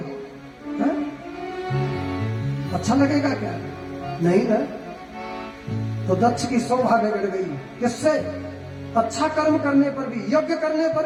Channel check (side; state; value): both; identical; correlation 1.00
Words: हा? अच्छा लगेगा क्या? नहीं ना। तो दक्ष की शोभा बिगड़ गई। किससे? अच्छा कर्म करने पर भी, यज्ञ करने